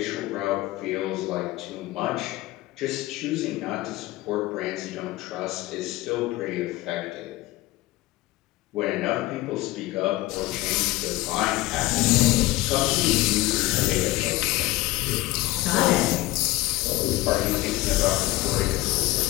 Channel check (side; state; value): right; quieter; 18.7 dB